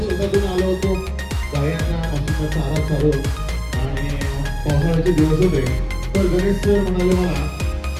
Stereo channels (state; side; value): identical; both; correlation 1.00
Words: शेतातून आलो होतो. गायांना मशीनचा चारा चालू आणि पावसाळ्याचे दिवस होते. तर गणेश सर म्हणाले मला